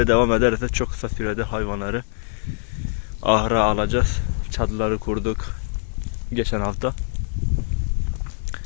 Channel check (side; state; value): right; silent; digital silence